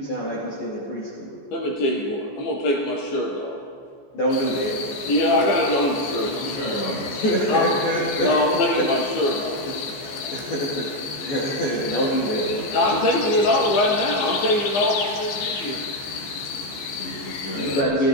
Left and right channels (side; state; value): right; late; 14 ms